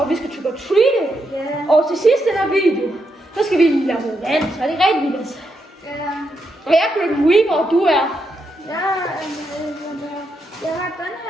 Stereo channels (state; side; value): normal; both; correlation 0.82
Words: vi skal trick or treat. Og til sidst i den her video, så skal vi lave noget vand, så er det rigtig vildt. Og jeg er Grim Reaper, og du er? Jeg har den